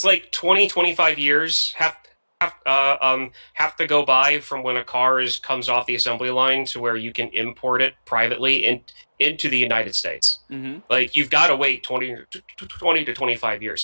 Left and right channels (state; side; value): inverted; both; correlation -1.00